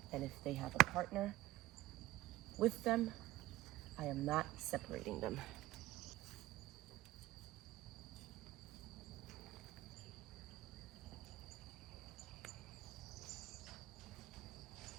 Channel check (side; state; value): left; quieter; 16.4 dB